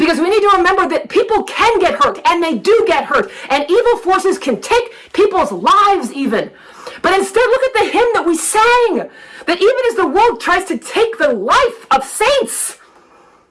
we need to remember that people can get hurt, and they do get hurt, and evil forces can take people's lives even. But instead, look at the hymn that we sang, that even as the world tries to take the life of saints,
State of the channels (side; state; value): both; identical; correlation 1.00